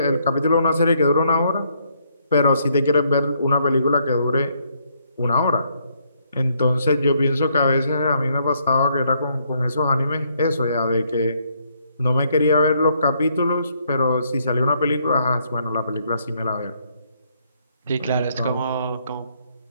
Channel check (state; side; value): inverted; both; correlation -0.71